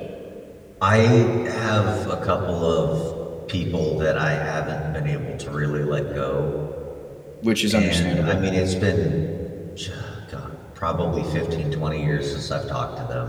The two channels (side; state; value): both; identical; correlation 1.00